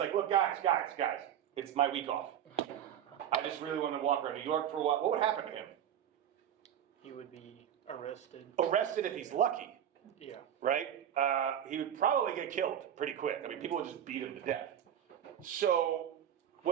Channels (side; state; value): left; quieter; 9.9 dB